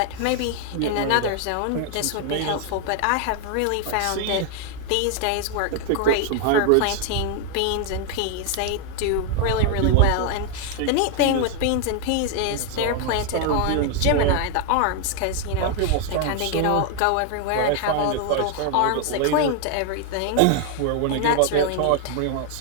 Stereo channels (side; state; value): both; different; correlation 0.00